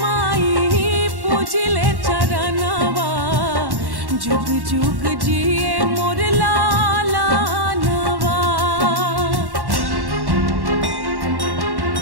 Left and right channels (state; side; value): late; left; 1.1 ms